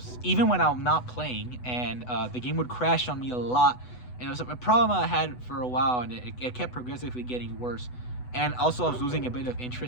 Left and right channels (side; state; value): right; late; 8.0 ms